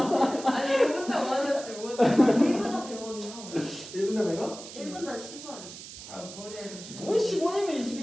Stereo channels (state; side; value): noise; right; hiss, 13 dB below the sound